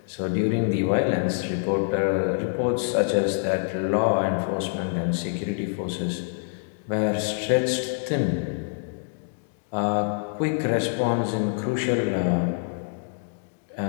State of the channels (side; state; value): right; silent; digital silence